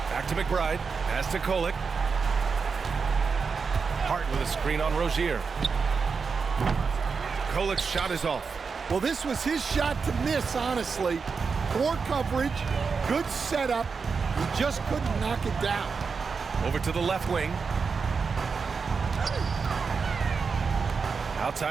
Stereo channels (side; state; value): left; quieter; 5.2 dB